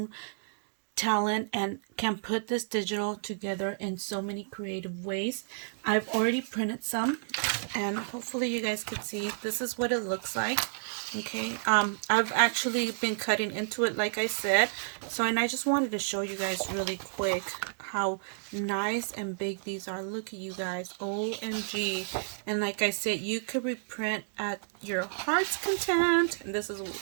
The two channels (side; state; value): left; silent; digital silence